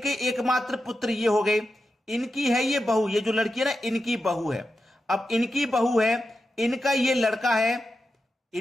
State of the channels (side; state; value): both; normal; correlation 0.89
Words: एकमात्र पुत्र ये हो गए। इनकी है ये बहू, ये जो लड़की है ना, इनकी बहू है। अब इनकी बहू है, इनका ये लड़का है,